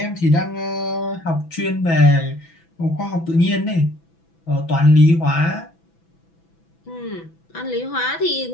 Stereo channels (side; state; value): right; late; 6.0 ms